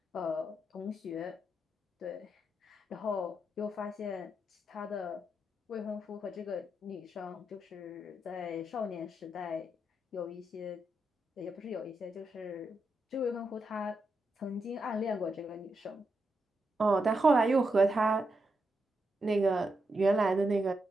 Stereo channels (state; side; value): normal; both; correlation 0.84